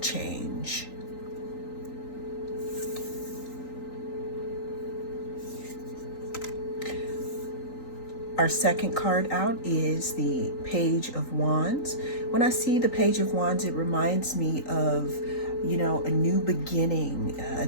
Our second card out is the Page of Wands. When I see the Page of Wands, it reminds me of, a new beginning, a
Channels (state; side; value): late; right; 3.9 ms